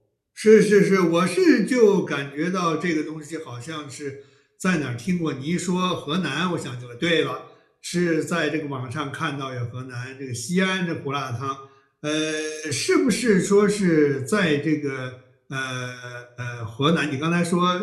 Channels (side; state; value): both; identical; correlation 1.00